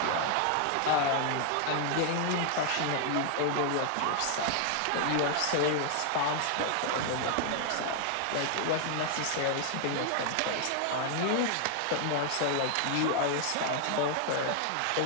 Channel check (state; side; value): different; both; correlation 0.00